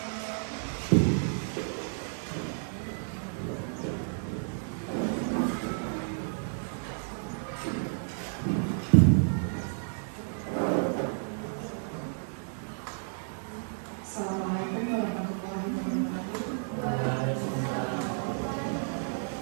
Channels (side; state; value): left; silent; 57 dB below the other